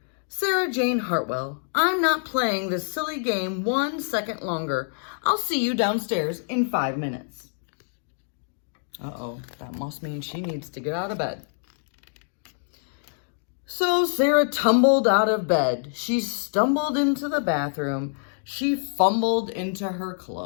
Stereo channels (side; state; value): right; silent; digital silence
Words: Sarah Jane Hartwell, I'm not playing this silly game 1 second longer. I'll see you downstairs in 5 minutes. Uh-oh, that must mean she needs to get out of bed. So Sarah tumbled out of bed. She stumbled into the bathroom. She fumbled into her